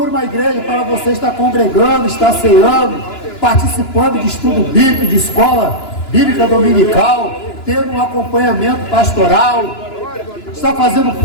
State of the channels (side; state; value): right; late; 2.9 ms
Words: uma igreja para você estar congregando, estar ceando, participando de estudo bíblico, de escola bíblica dominical, tendo um acompanhamento pastoral, está fazendo